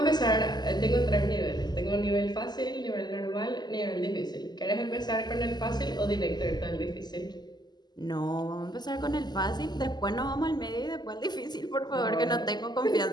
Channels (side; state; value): right; late; 0.21 ms